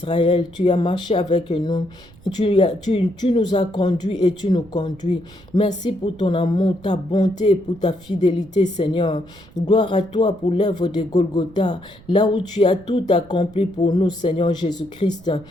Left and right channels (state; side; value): noise; right; rumble, 24 dB below the sound